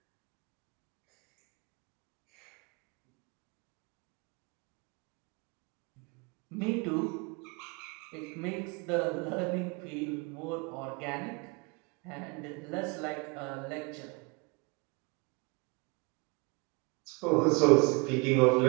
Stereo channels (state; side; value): quieter; left; 30.0 dB